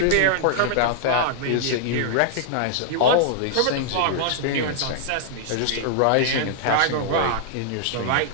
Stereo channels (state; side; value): different; both; correlation -0.01